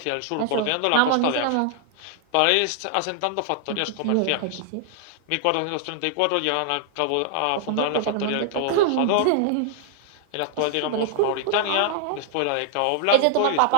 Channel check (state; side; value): different; both; correlation 0.00